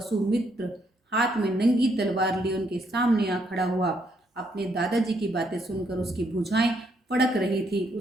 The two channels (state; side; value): normal; both; correlation 0.73